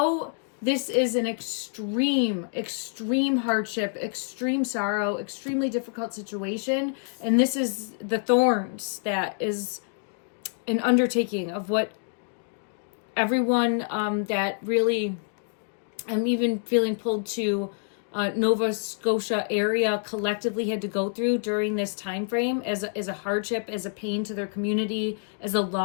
this is an extreme hardship, extreme sorrow, extremely difficult situation, and this is the thorns that is an undertaking of what everyone that really, I'm even feeling pulled to Nova Scotia area collectively had to go through during this time frame as a hardship, as a pain to their community, as a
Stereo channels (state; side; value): silent; right; 60 dB below the other